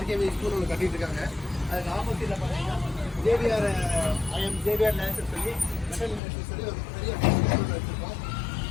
ஸ்கூல் ஒன்று கட்டிட்டு இருக்காங்க. அதுக்கு ஆப்போசிட்டில் பார்த்தீங்கன்னா ஜேபிஆர் லேசர் சொல்லி மெட்டல் இண்டஸ்ட்ரி சொல்லி ஒரு பெரிய ஸ்கூல் வச்சுருக்கோம்.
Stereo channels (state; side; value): drops out; right; at 6.2 s